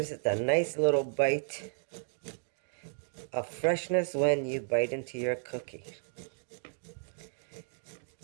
it a nice little bite of freshness when you bite into your cookie.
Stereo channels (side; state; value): left; silent; digital silence